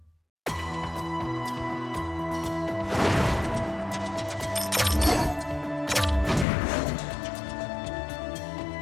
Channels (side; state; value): right; drops out; at 6.5 s